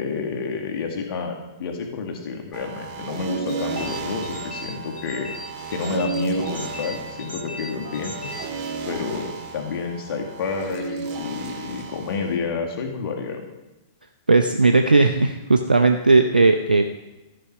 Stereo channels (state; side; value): inverted; both; correlation -0.71